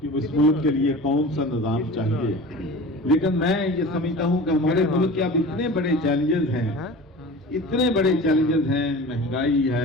اس ملک کے لیے کون سا نظام چاہیے, لیکن میں یہ سمجھتا ہوں کہ ہمارے ملک کے اب اتنے بڑے چیلنجز ہیں, مہنگائی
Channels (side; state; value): both; normal; correlation 0.37